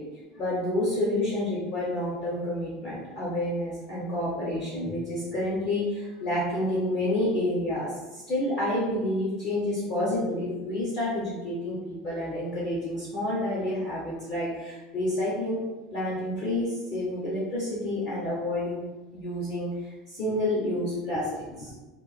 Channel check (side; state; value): both; normal; correlation 0.34